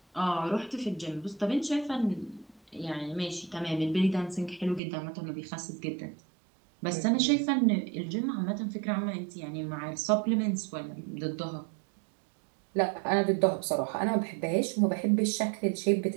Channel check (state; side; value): drops out; left; at 4.8 s